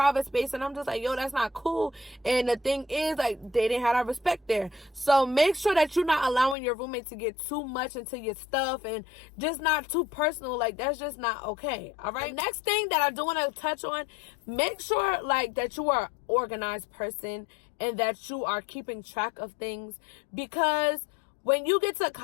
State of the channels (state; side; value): drops out; right; at 6.6 s